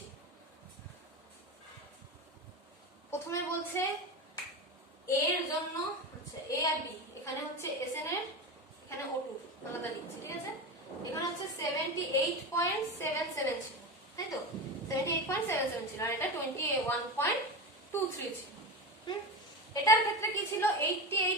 প্রথমে বলছে এর জন্য, আচ্ছা এ আর বি, এখানে হচ্ছে এসএন এর, এখানে O2 আলাদা লিখছি, ঠিক আছে? এখানে হচ্ছে 78.77 ছিল, তাই তো? 78.77 ছিল, আর এটা 21.23 ছিল। এটার ক্ষেত্রে কি ছিল,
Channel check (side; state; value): both; normal; correlation 0.22